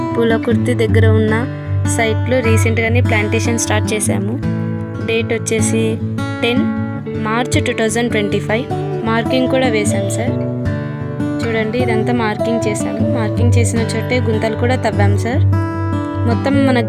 పూలకుర్తి దగ్గర ఉన్న సైట్లో రీసెంట్గానే ప్లాంటేషన్ స్టార్ట్ చేశాము. డేట్ వచ్చేసి 10 మార్చ్ 2025. మార్కింగ్ కూడా వేశాం సార్. చూడండి, ఇదంతా మార్కింగ్ చేశాము. మార్కింగ్ చేసిన చోటే గుంతలు కూడా తవ్వాం సార్. మొత్తం మన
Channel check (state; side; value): identical; both; correlation 1.00